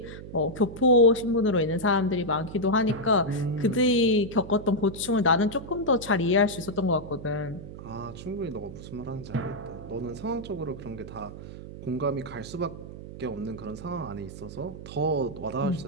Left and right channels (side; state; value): right; noise; hum, 12 dB below the sound